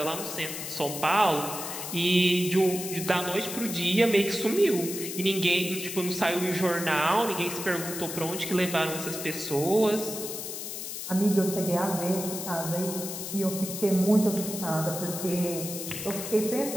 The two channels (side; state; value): left; noise; hiss, 7 dB below the sound